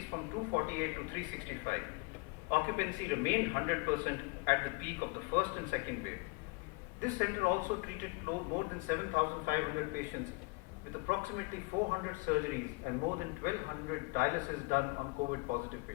from 248 to 365. Occupancy remained 100% at the peak of the first and second wave. This center also treated more than 7,500 patients with approximately 400 surgeries and more than 1,200 dialysis done on COVID-positive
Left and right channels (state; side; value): quieter; right; 28.7 dB